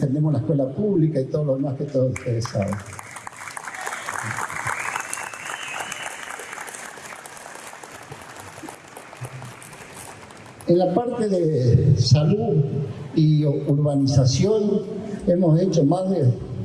la escuela pública y todo lo demás que todos ustedes saben. En la parte de salud y urbanización hemos hecho más de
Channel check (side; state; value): both; identical; correlation 1.00